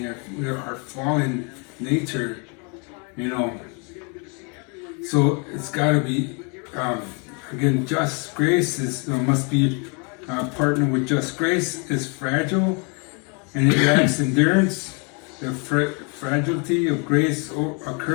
our fallen nature, So it's got to be, again, just grace must be partnered with just grace. Is fragile and it lacks endurance. The fragility of grace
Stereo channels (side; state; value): right; quieter; 34.6 dB